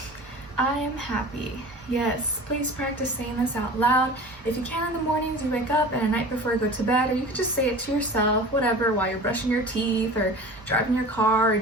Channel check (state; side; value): normal; both; correlation 0.38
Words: I am happy. Yes, please practice saying this out loud. If you can in the mornings you wake up and at night before you go to bed, or you could just say it to yourself, whatever, while you're brushing your teeth or driving your car or